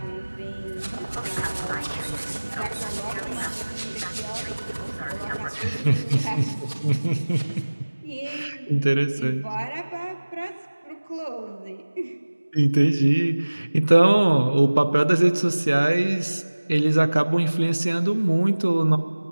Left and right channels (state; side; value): inverted; both; correlation -1.00